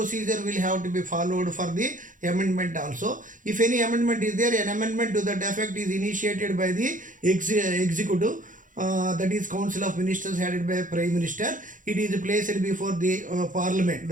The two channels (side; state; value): left; late; 0.38 ms